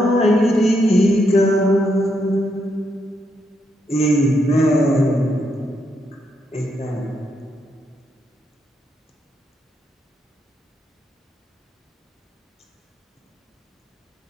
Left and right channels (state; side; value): normal; both; correlation 0.79